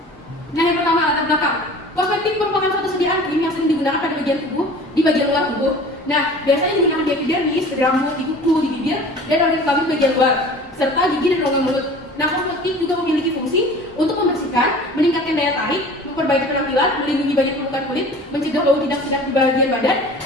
Nah, yang pertama latar belakang. Kosmetik merupakan suatu sediaan krim yang sering digunakan pada bagian tubuh, di bagian luar tubuh. Nah, biasanya digunakan di epidermis, di rambut, di kuku, di bibir, dan organ kelamin bagian luar, serta gigi dan rongga mulut. Nah, kosmetik juga memiliki fungsi untuk membersihkan, meningkatkan daya tarik, memperbaiki penampilan, melindungi banyak permukaan kulit, mencegah bau tidak sedap di bagian badan,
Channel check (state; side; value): normal; both; correlation 0.42